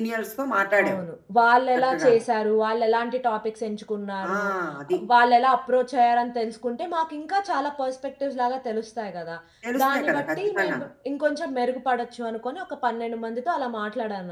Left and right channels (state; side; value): identical; both; correlation 1.00